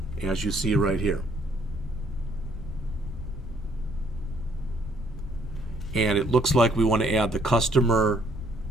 as you see right here. And it looks like we want to add the customer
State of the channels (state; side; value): normal; both; correlation 0.65